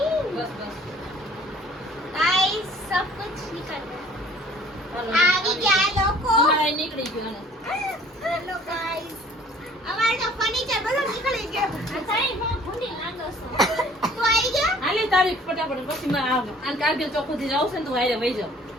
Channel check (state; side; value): normal; both; correlation 0.54